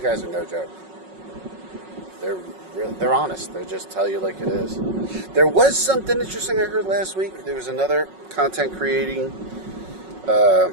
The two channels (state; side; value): late; left; 5.4 ms